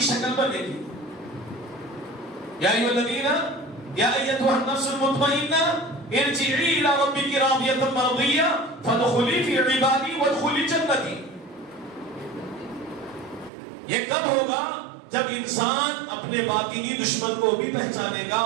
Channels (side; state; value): left; drops out; at 13.5 s